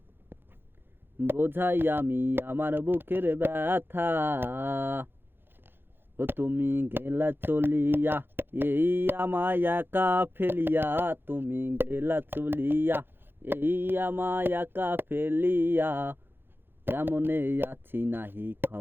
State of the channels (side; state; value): left; late; 0.10 ms